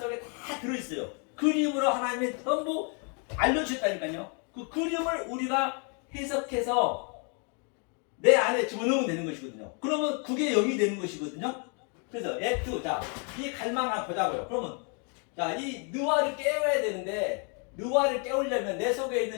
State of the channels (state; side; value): quieter; right; 38.2 dB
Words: 다 들어있어요. 그림으로 하나님이 전부 알려주셨다니까요. 그 그림을 우리가 해석해서 내 안에 집어넣으면 되는 것이거든요. 그러면 그게 영이 되는 것이거든요. 그래서 에트, 자, 이 갈망을 한번 보자고요. 그러면, 자, 이 느와를 깨워야 되는데, 느와를 깨우려면, 내 속에